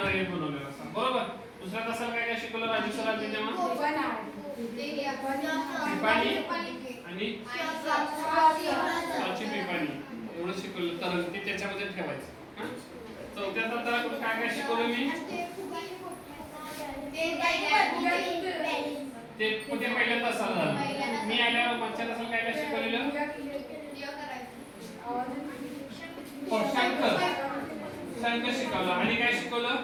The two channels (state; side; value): identical; both; correlation 1.00